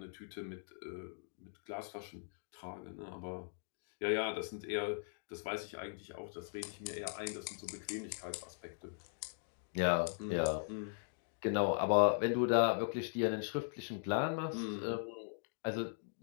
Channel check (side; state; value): right; silent; digital silence